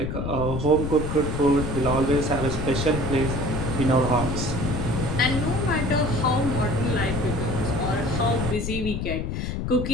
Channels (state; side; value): noise; left; rumble, 3 dB below the sound